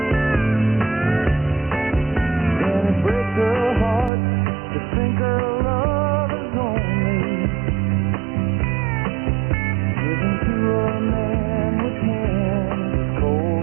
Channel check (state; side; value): drops out; left; at 4.1 s